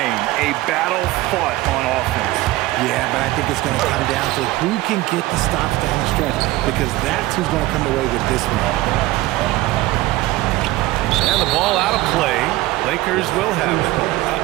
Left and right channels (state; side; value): quieter; left; 17.8 dB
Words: a battle fought on offense. Yeah, but I think it's going to come down to who can get the stops down the stretch, because that's who's going to come away with this one. And the ball out of play. Lakers will have it.